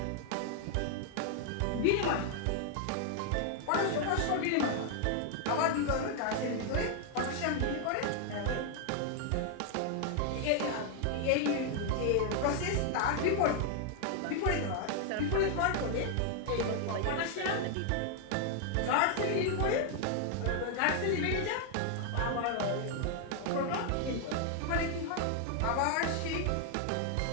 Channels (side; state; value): both; different; correlation 0.00